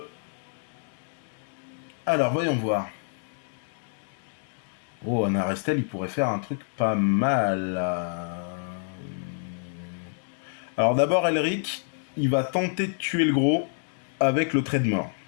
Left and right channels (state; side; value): silent; right; digital silence